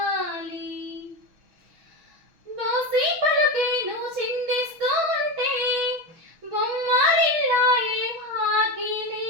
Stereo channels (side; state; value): left; late; 6.2 ms